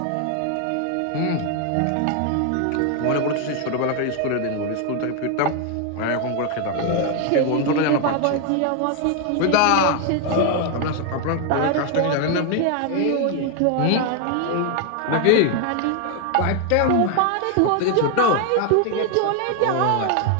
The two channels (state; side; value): different; both; correlation 0.01